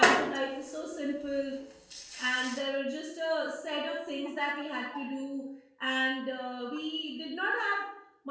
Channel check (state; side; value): identical; both; correlation 1.00